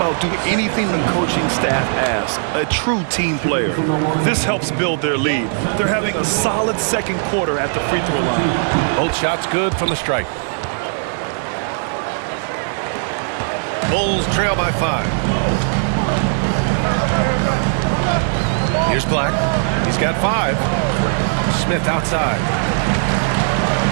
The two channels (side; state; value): left; silent; digital silence